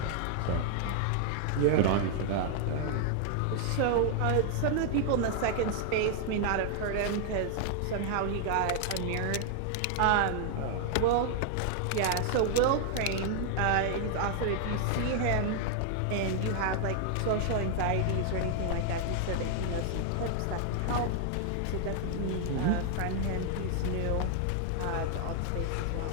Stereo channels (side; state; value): both; different; correlation 0.00